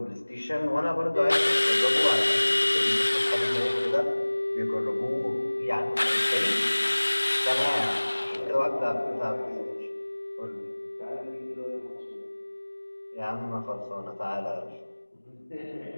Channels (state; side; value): inverted; both; correlation -1.00